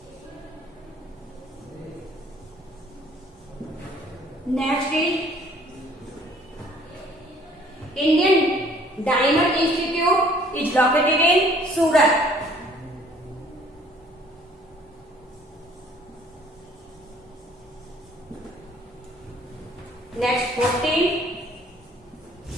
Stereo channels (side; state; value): both; normal; correlation 0.57